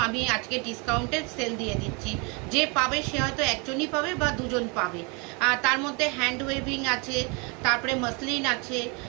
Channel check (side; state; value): left; quieter; 31.6 dB